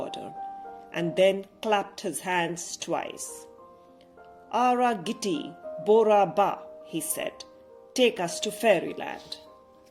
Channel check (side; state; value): both; identical; correlation 1.00